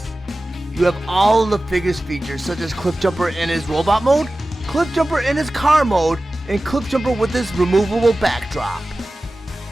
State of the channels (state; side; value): normal; both; correlation 0.96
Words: you have all of the figures features, such as Cliffjumper in his robot mode, Cliffjumper in his car mode, and Cliffjumper with his removable backdrop.